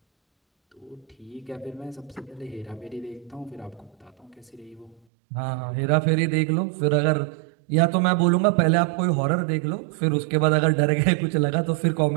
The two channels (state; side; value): drops out; left; at 5.0 s